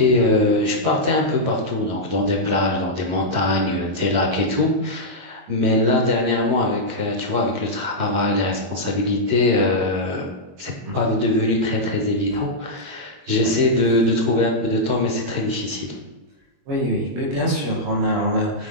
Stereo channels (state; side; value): late; left; 22 ms